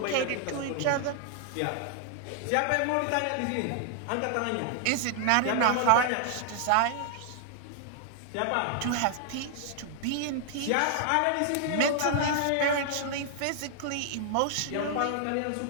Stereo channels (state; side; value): different; both; correlation 0.00